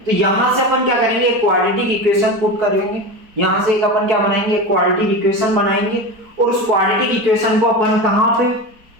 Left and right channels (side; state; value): left; late; 4.6 ms